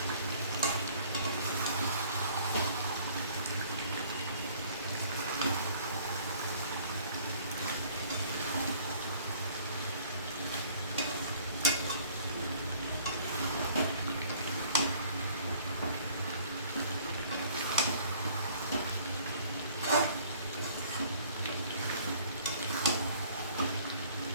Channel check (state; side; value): inverted; both; correlation -0.56